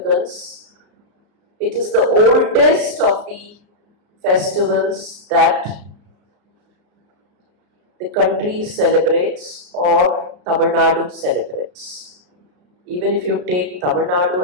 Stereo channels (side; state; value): left; late; 34 ms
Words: It is the oldest of the festivals that the country celebrates or Tamil Nadu celebrates. Even if you take Tamil Nadu